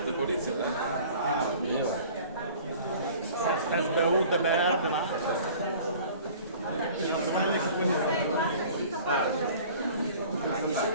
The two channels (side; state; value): both; inverted; correlation -0.47